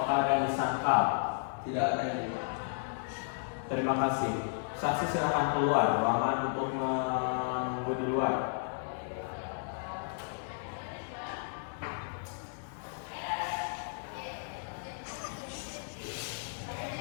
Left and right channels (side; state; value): right; silent; digital silence